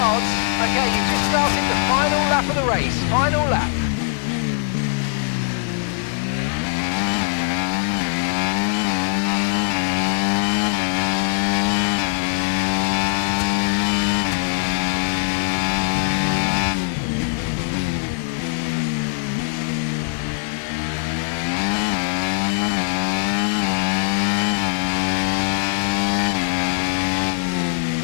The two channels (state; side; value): silent; right; digital silence